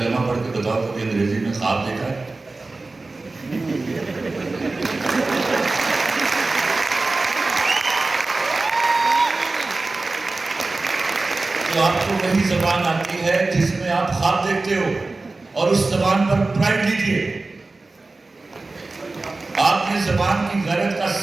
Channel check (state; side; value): quieter; left; 3.4 dB